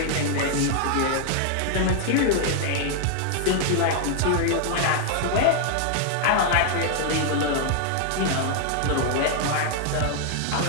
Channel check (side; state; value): both; different; correlation 0.00